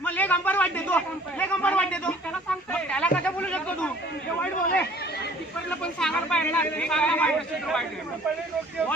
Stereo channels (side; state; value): both; normal; correlation 0.53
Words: मग लेग अंपायर वाईट देतो. लेग अंपायर वाईट देतो. त्याला सांगतो. त्याला कसं बोलू शकतो तू? हे वाईट बोल आहे. कीपरला पण सांगायला पाहिजे ना. हे सांगा वाईट असेल तर वाईट आहे.